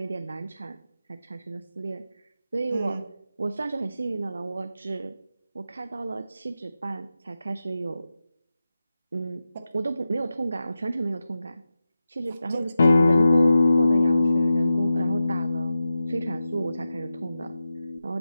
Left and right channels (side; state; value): both; inverted; correlation -0.92